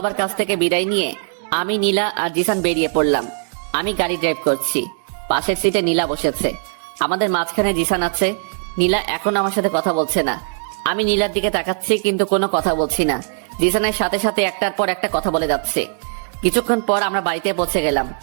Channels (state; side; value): silent; left; 66 dB below the other